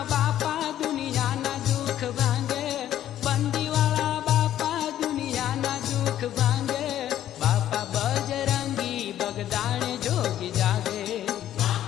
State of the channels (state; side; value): quieter; right; 11.8 dB